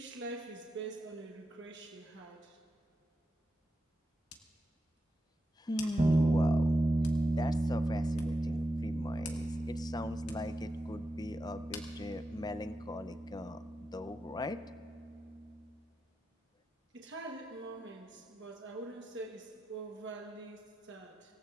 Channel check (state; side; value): normal; both; correlation 0.89